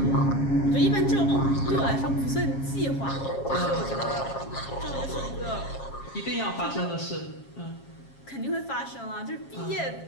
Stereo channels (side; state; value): right; late; 7.4 ms